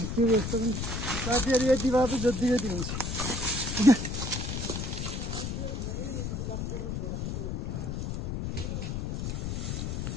त्यो यस्तो पनि साथीहरू यति भए पनि जति जति हुन्छ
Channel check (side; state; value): left; noise; rumble, 3 dB below the sound